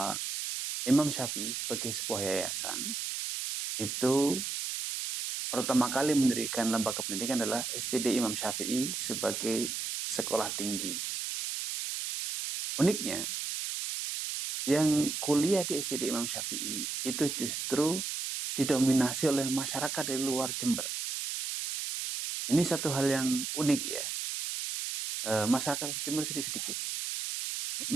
Imam Syafi'i sebagai sebuah yayasan itu pertama kali mendirikan lembaga pendidikan adalah STD Imam Syafi'i sebagai sekolah tinggi. Uniknya, yang kuliah di STD Imam Syafi'i itu justru didominasi oleh masyarakat dari luar Jember. Ini satu hal yang unik ya. Masyarakat Jember sedikit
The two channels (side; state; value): right; noise; hiss, 3 dB below the sound